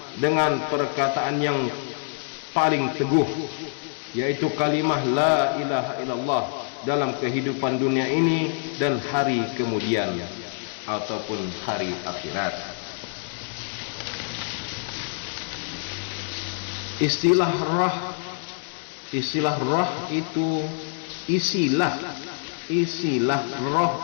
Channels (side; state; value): right; silent; 61 dB below the other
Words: dengan perkataan yang paling teguh, yaitu kalimah la ilaha illallah dalam kehidupan dunia ini dan hari kemudian ataupun hari akhirat. Istilah roh itu isilah